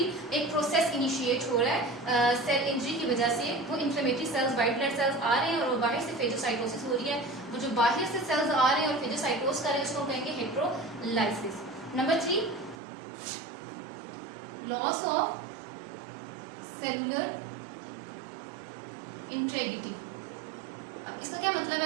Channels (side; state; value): left; drops out; at 12.8 s